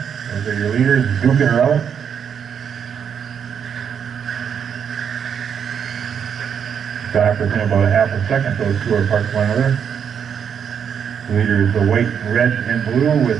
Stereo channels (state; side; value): quieter; left; 7.7 dB